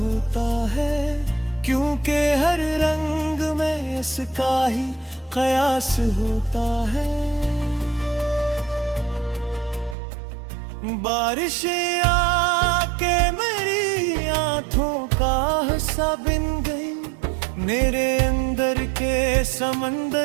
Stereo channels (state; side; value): drops out; left; at 10.0 s